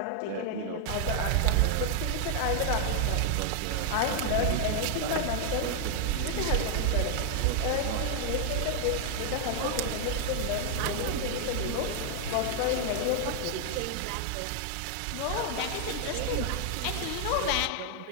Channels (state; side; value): different; both; correlation 0.00